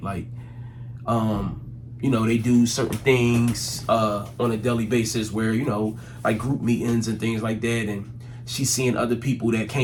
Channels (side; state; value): both; identical; correlation 1.00